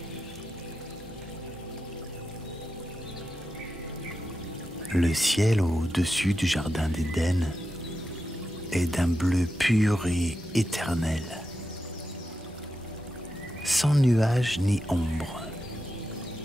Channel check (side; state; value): both; normal; correlation 0.89